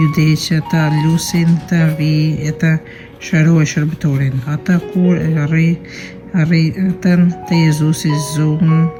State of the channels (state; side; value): identical; both; correlation 1.00